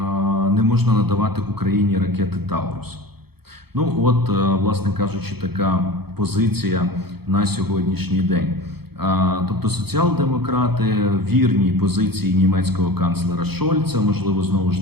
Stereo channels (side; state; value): left; late; 0.96 ms